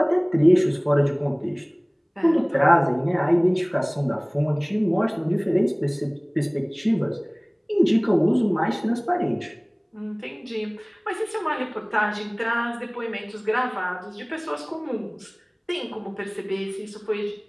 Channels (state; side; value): identical; both; correlation 1.00